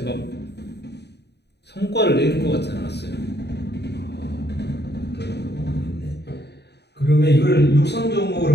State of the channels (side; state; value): right; late; 0.49 ms